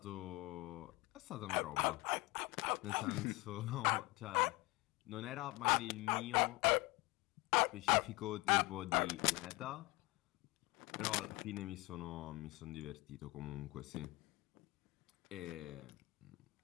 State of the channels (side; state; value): right; quieter; 22.6 dB